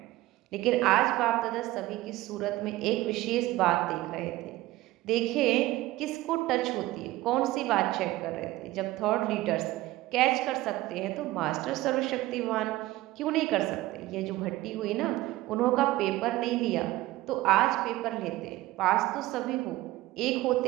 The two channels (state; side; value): quieter; left; 17.4 dB